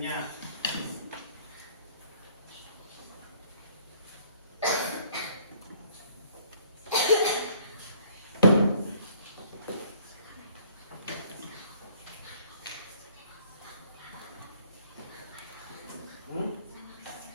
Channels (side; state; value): both; inverted; correlation -0.59